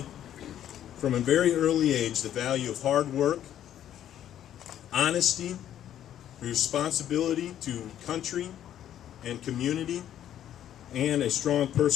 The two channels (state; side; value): quieter; right; 11.0 dB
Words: from a very early age the value of hard work, honesty, responsibility to country and community, and a strong